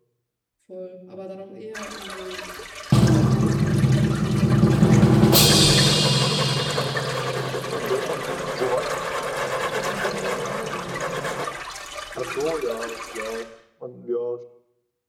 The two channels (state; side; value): identical; both; correlation 1.00